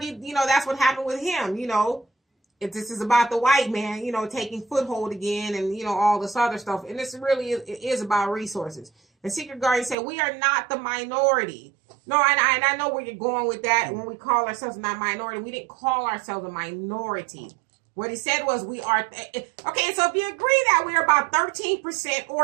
that's what happened with him, if this is about the white man, taking foothold again and, all this other stuff. And this really is about resources. And Secret Guardian said, we are not the minority. No, and I know where you're going with that. When we call ourselves not minority, we didn't call ourselves a minority. What he said was we are. Okay, so if you agree that we're about 13%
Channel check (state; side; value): drops out; left; at 10.0 s